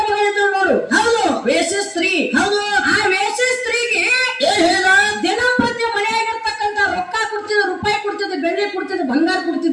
ಮಗ ಇದ್ರು ನೋಡು. ಹೌದು. ವೇಶ್ಯ ಸ್ತ್ರೀ. ಹೌದು. ಆ ವೇಶ್ಯ ಸ್ತ್ರೀಗೆ ಏನ್ ಹೇಳ? ದಿನಂಪ್ರತಿ ಮನೆಯಾಗಿರ್ತಕ್ಕಂತ ರೊಕ್ಕ ಕೊಡ್ತಿದ್ದ, ರೂಪಾಯಿ ಕೊಡ್ತಿದ್ದ, ಬೆಳ್ಳಿ ಕೊಡ್ತಿದ್ದ, ಬಂಗಾರ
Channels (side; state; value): both; identical; correlation 1.00